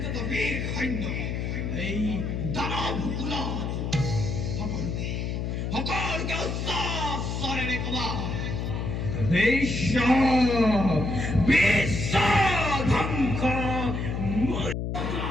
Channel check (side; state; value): left; noise; hum, 2 dB below the sound